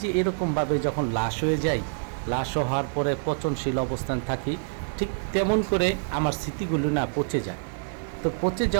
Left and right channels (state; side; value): silent; left; digital silence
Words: যে এরকমভাবে যখন লাশ হয়ে যায়, লাশ হওয়ার পরে পচনশীল অবস্থান থাকি, ঠিক তেমন করে আমার স্মৃতিগুলো না পচে যায়। তো পচে